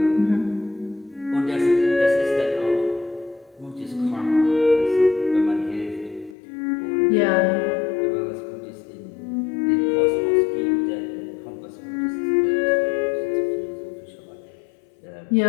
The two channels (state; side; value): drops out; right; at 6.4 s